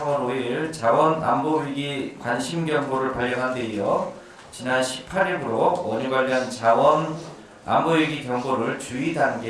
5일 자원안보위기 관심경보를 발령한 데 이어 지난 18일부로 원유 관련 자원안보위기 경보를 주의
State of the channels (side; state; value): both; identical; correlation 1.00